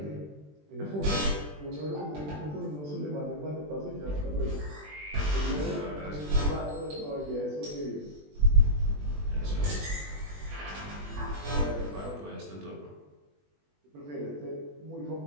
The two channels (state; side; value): late; left; 20 ms